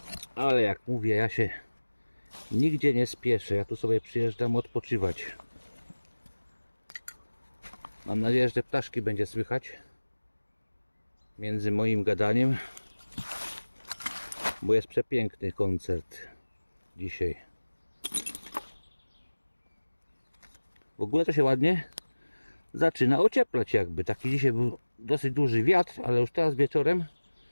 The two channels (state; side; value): inverted; both; correlation -1.00